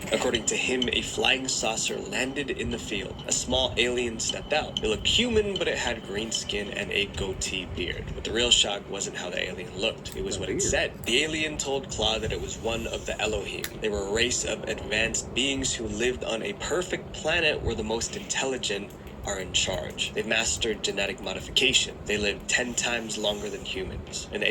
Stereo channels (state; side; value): identical; both; correlation 1.00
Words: According to him, a flying saucer landed in the field. A small alien stepped out. It looked human, but it had green skin and a goatee beard. But the real shock wasn't how the alien looked. It was what it said. The alien told Claude that it was one of the Elohim. They were a race of advanced beings who lived on a perfect planet where the most intelligent are in charge. They've mastered genetic modification. They live 10 times longer than humans. An